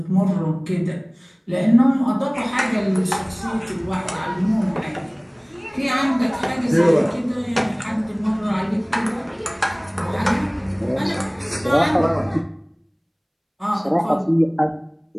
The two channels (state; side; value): identical; both; correlation 1.00